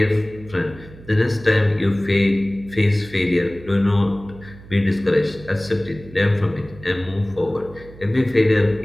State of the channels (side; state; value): right; noise; hum, 19 dB below the sound